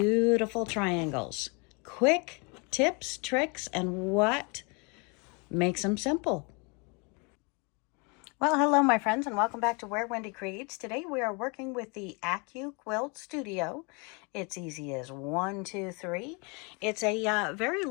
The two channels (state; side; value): quieter; right; 31.8 dB